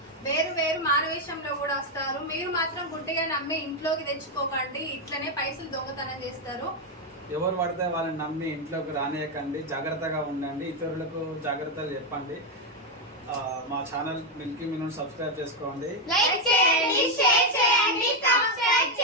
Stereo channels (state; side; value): normal; both; correlation 0.04